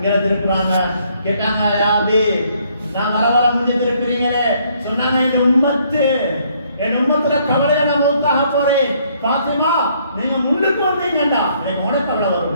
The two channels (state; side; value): inverted; both; correlation -0.67